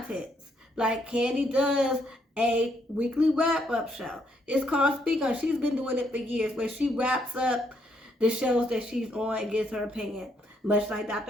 Like, Candy does a weekly wrap-up show. It's called Speak On. She's been doing it for years, where she wraps up the shows that she's on and gives her opinion. Much like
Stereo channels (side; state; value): both; normal; correlation 0.73